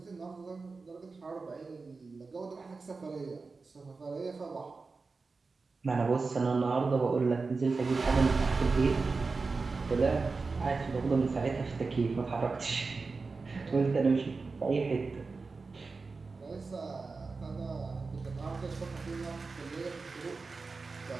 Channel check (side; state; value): left; quieter; 4.2 dB